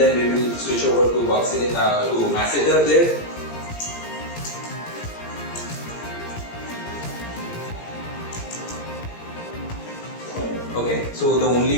we will switch over to masseter there. Okay, so the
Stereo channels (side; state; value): right; late; 17 ms